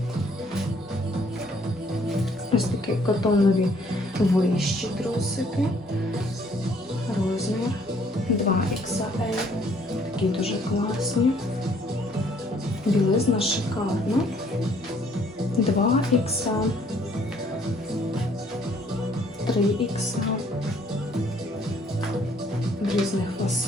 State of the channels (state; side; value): normal; both; correlation 0.63